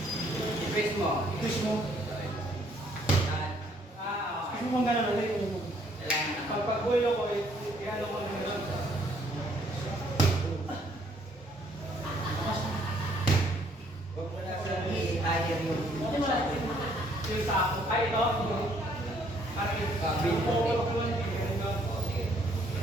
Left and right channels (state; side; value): normal; both; correlation 0.65